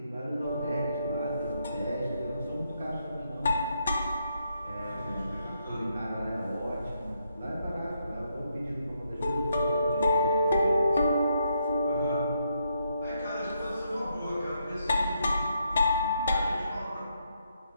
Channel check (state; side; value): inverted; both; correlation -0.78